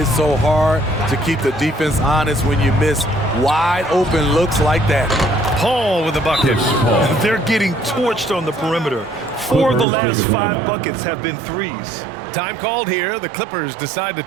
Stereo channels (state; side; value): drops out; left; at 9.9 s